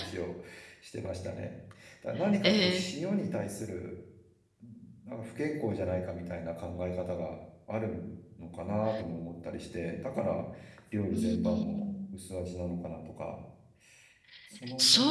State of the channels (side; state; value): both; identical; correlation 1.00